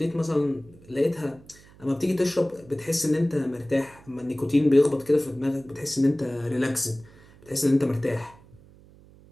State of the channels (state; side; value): noise; right; hum, 24 dB below the sound